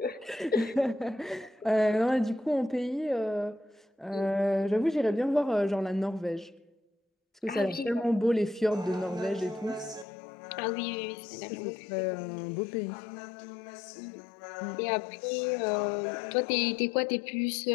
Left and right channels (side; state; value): right; drops out; at 10.1 s